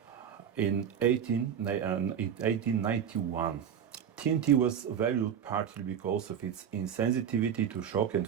in 1891. TNT was valued partly because of its insensitivity to shock and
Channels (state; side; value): quieter; left; 8.4 dB